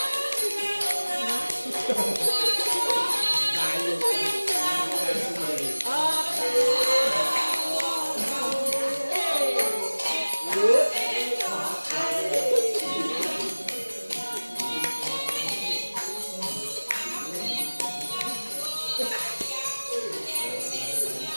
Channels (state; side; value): inverted; both; correlation -1.00